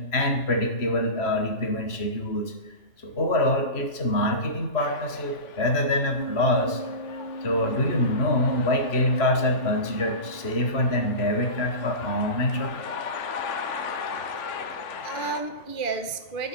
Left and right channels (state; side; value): late; right; 3.0 ms